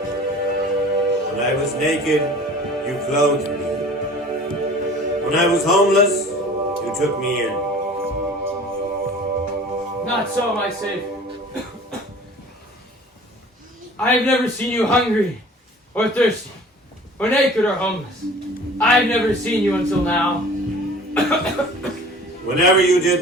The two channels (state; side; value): normal; both; correlation 0.45